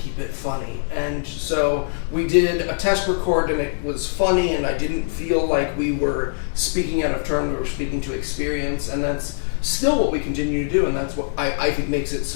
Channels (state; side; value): silent; right; 61 dB below the other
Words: it funny. And so we did a test record, and it was funny, and I didn't feel like we were speaking out of turn. We were speaking to experience, and that's still what we continue to do, and that's what I think makes it